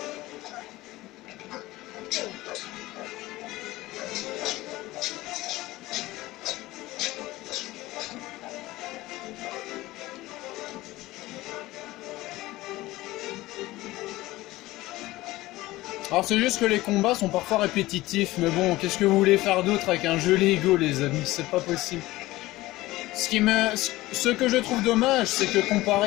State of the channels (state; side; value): quieter; right; 18.3 dB